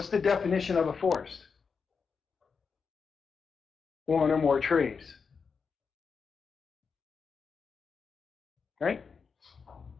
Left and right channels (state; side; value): quieter; right; 5.5 dB